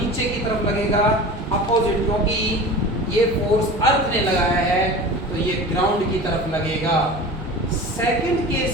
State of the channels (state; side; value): normal; both; correlation 0.35